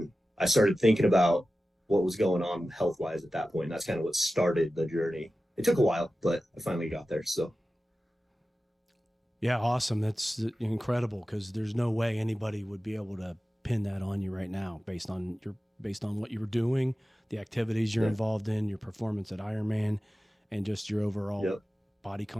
I started thinking about what was going on health wise at that point. And that's kind of what started the journey. It took a while, but I finally got there. So. Yeah, awesome. That's incredible, because there's no way anybody would be able to pin that on you right now based on what you were doing, the activities you're involved in, your performance at Ironman, and just your overall body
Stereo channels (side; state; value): both; normal; correlation 0.94